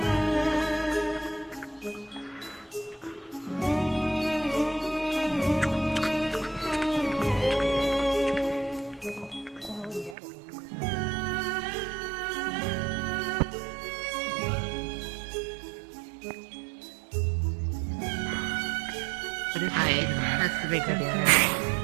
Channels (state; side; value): drops out; left; at 10.2 s